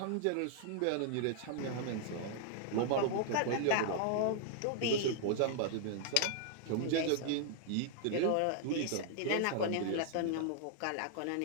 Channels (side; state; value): both; different; correlation 0.00